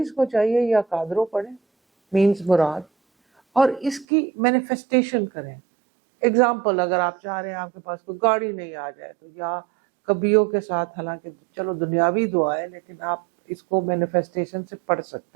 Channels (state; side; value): drops out; left; at 4.0 s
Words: کو چاہیے یا قادرو پڑھیں, مینز مراد, اور اس کی مینیفیسٹیشن کریں. ایگزامپل, اگر آپ چاہ رہے ہیں آپ کے پاس کوئی گاڑی نہیں آ جائے تو یا کبیوں کے ساتھ, حالانکہ چلو دنیاوی دعا ہے لیکن آپ اس کو مینیفیسٹیشن سے پڑھ